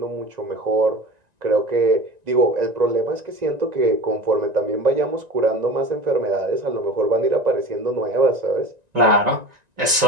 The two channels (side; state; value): left; late; 1.9 ms